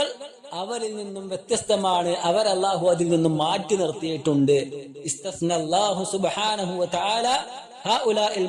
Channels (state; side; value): identical; both; correlation 1.00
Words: അവരിൽ നിന്നും വ്യത്യസ്തമാണ്. അവർ അല്ലാഹു അതിൽ നിന്നും മാറ്റി നിർത്തിയിട്ടുണ്ട്. ഇസ്തസ്നല്ലാഹു സുബ്ഹാനഹു വ തആല ഹഉലാഇൽ